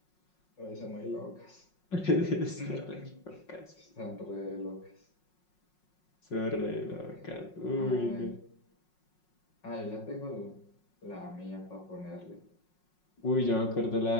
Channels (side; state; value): right; late; 5.5 ms